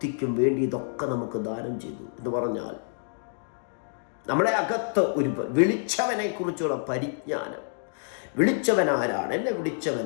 വേണ്ടി ഇതൊക്കെ നമുക്ക് ദാനം ചെയ്തു എന്ന് പറഞ്ഞാൽ, നമ്മുടെ അകത്ത് ഒരു വിളിച്ചവനെ കുറിച്ചുള്ള പരിജ്ഞാനം. വിളിച്ചവൻ ആരാണ്? എന്നെ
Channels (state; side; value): silent; right; digital silence